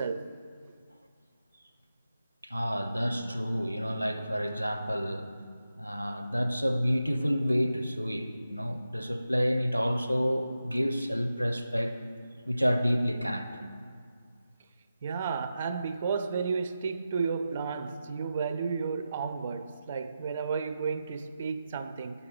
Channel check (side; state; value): both; inverted; correlation -0.91